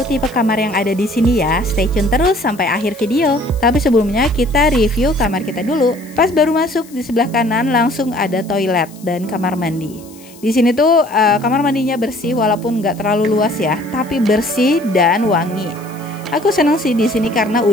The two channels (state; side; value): noise; left; hiss, 23 dB below the sound